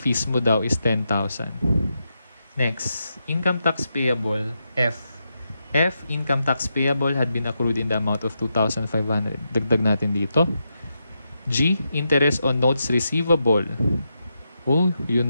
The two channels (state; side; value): inverted; both; correlation -0.85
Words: mo daw is 10,000. Next, income tax payable, F. F, income tax payable had been accrued in the amount of 2,500. Dagdag natin dito. G, interest on notes receivable. Oh,